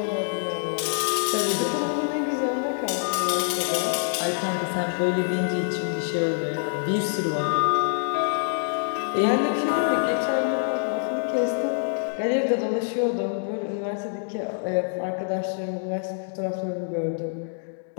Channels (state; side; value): silent; right; digital silence